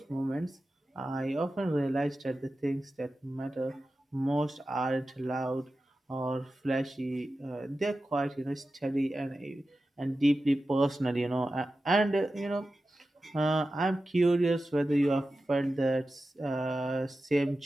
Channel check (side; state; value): both; normal; correlation 0.93